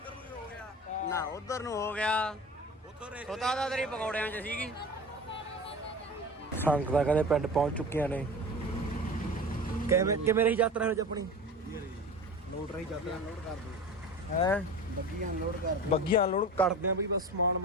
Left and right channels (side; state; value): both; normal; correlation 0.34